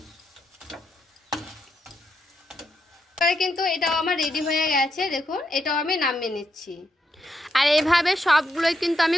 কিন্তু এটাও আমার রেডি হয়ে গেছে, দেখুন এটাও আমি নামিয়ে নিচ্ছি। আর এইভাবে সবগুলোই কিন্তু আমি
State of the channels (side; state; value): both; normal; correlation 0.81